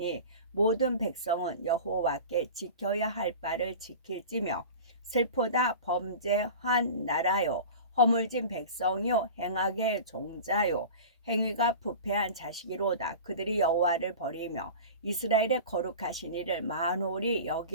모든 백성은 여호와께 지켜야 할 바를 지킬지며 슬프다 범죄한 나라요 허물진 백성이요 행악의 종자요 행위가 부패한 자식이로다. 그들이 여호와를 버리며 이스라엘의 거룩하신 이를 만홀히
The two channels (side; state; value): both; inverted; correlation -0.35